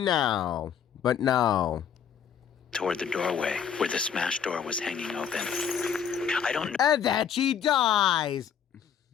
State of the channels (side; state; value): right; quieter; 7.9 dB